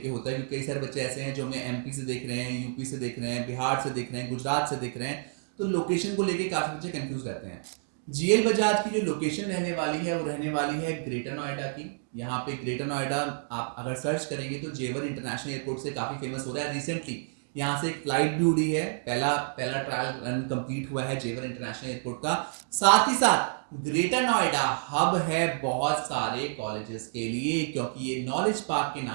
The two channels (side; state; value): left; silent; digital silence